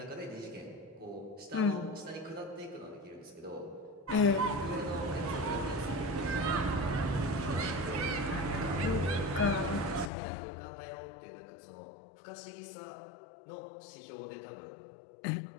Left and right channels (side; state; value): right; drops out; at 10.1 s